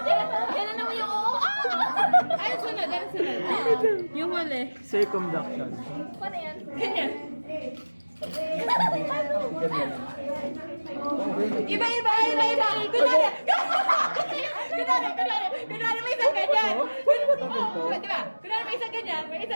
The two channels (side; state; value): both; inverted; correlation -1.00